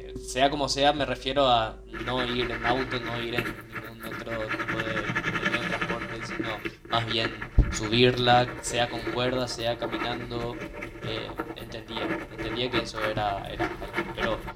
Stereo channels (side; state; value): both; identical; correlation 1.00